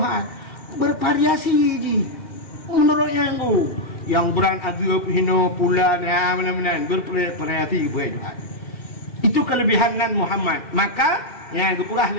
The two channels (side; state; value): right; late; 2.1 ms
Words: Bervariasi je menurut yang beran agak hino pula mana-mana bervariasi buat. Itu kelebihan Muhammad. Maka yang gepurah